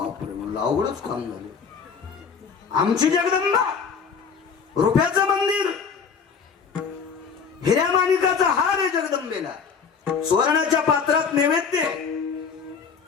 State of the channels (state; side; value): quieter; right; 6.0 dB